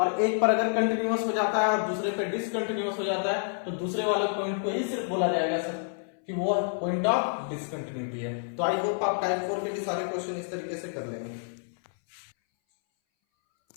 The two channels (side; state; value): right; silent; 59 dB below the other